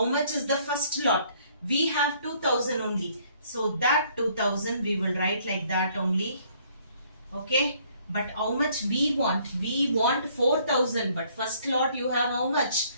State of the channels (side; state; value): both; inverted; correlation -0.63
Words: much is the first lot? We have 2000 only. So that 2000 we will write like that only. Okay. But how much we want? We want 4000. But first lot you have how much?